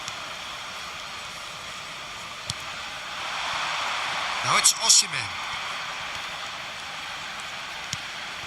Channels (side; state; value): both; identical; correlation 1.00